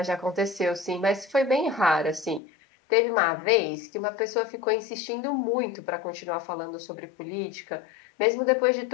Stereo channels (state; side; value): drops out; right; at 2.4 s